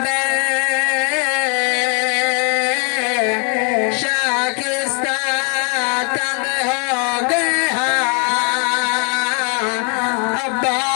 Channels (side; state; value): right; quieter; 36.0 dB